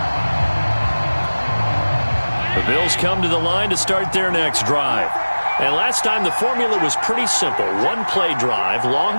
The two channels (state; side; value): inverted; both; correlation -1.00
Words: The Bills come to the line to start their next drive. And last time the formula was pretty simple. One play drive,